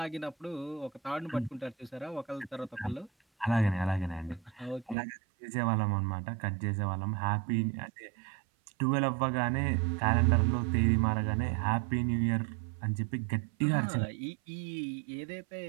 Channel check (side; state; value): left; drops out; at 5.0 s